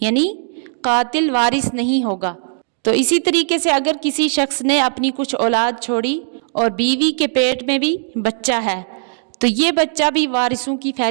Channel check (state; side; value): silent; left; 64 dB below the other